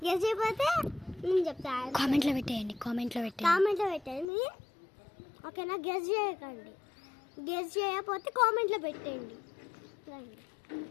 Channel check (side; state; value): right; drops out; at 4.2 s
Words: గెస్ చేయకపోతే నేను చెప్తాను. కామెంట్లో పెట్టండి. ఓకేనా? గెస్ చేయకండి. గెస్ చేయకపోతే కామెంట్లో పెట్టండి.